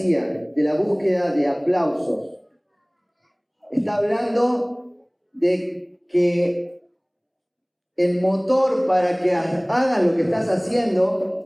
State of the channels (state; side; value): identical; both; correlation 1.00